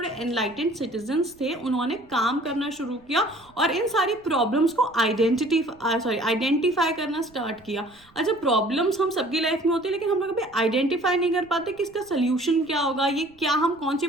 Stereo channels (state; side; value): noise; right; rumble, 29 dB below the sound